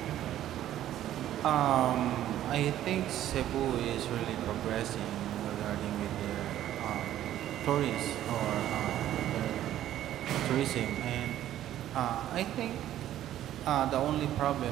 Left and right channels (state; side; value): quieter; left; 12.4 dB